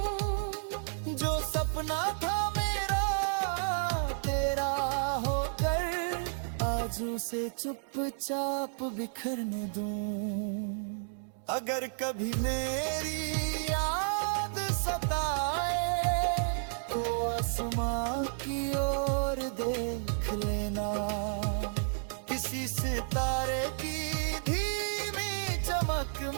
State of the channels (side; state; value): left; silent; digital silence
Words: जो सपना था मेरा तेरा होकर आज उसे चुपचाप बिखरने दूं। अगर कभी मेरी याद सताए तो आसमां की ओर देख लेना। किसी सितारे की धीमी चमक